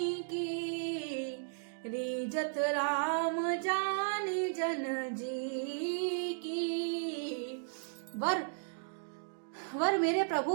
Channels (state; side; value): silent; left; digital silence